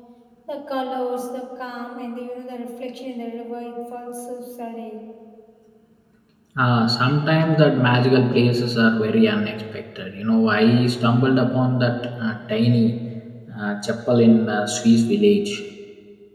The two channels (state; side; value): identical; both; correlation 1.00